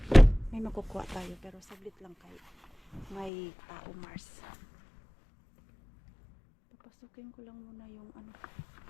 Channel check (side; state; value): right; drops out; at 3.3 s